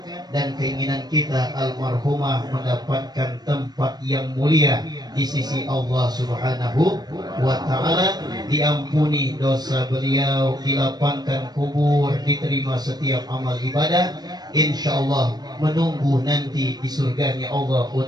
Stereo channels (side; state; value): left; late; 0.19 ms